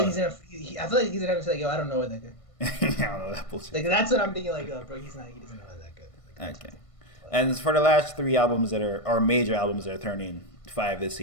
he's gonna. I feel like he's gonna say like, "Yo, I don't know what that good." I don't know that bullshit. Like that's what I'm thinking. Like, bro, he doesn't know that good. Like, okay. And for the last 3 albums that are major albums that are turning 5 this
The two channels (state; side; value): late; right; 1.5 ms